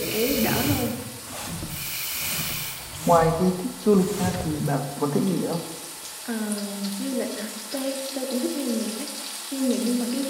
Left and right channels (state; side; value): identical; both; correlation 1.00